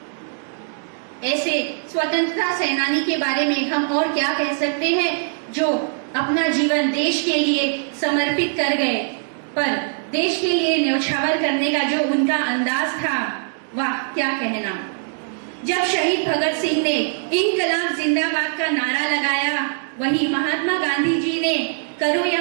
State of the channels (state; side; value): silent; left; digital silence